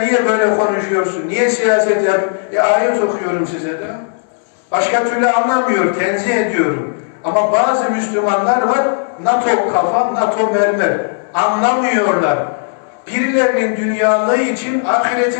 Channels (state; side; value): silent; right; 64 dB below the other